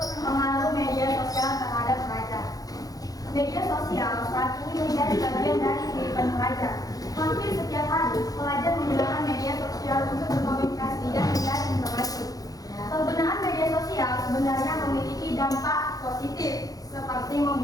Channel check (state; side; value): late; right; 0.18 ms